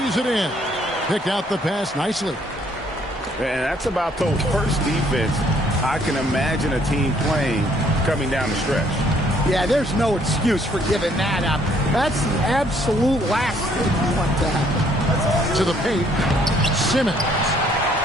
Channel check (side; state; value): both; normal; correlation 0.65